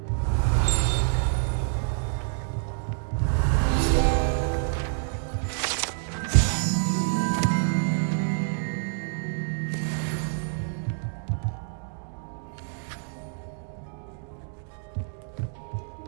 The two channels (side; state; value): left; silent; digital silence